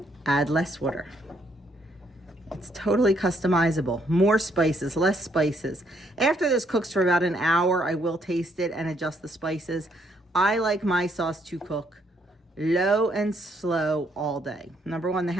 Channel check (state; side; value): normal; both; correlation 0.71